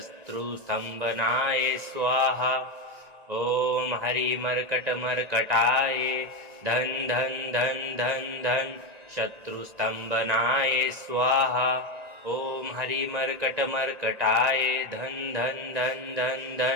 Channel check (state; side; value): late; left; 1.9 ms